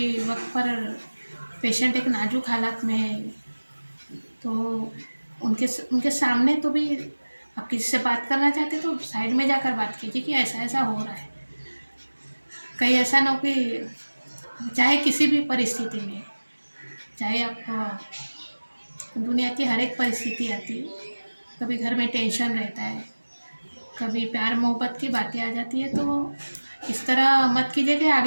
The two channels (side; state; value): both; inverted; correlation -1.00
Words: वक्त पर पेशेंट एक नाजुक हालत में है, तो उनके सामने तो भी आप किसी से बात करना चाहते तो साइड में जाकर बात कीजिए कि ऐसा ऐसा हो रहा है। कहीं ऐसा ना हो कि, चाहे किसी भी परिस्थिति में, चाहे आप, दुनिया की हर एक परिस्थिति आती है, कभी घर में टेंशन रहता है, कभी प्यार मोहब्बत की बातें आ जाती है, तो इस तरह मत कीजिए कि